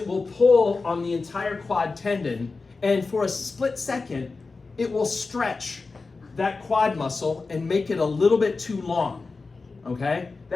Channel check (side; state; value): right; quieter; 4.0 dB